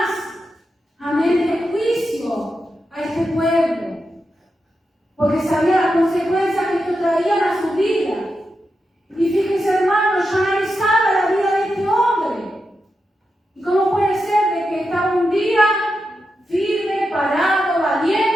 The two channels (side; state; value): both; normal; correlation 0.88